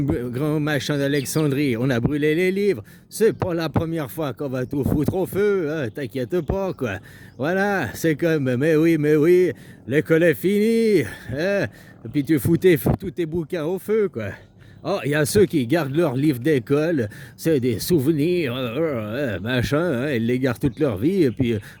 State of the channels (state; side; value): identical; both; correlation 1.00